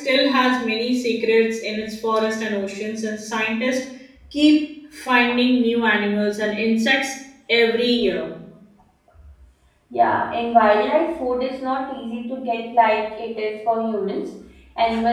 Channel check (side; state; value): both; identical; correlation 1.00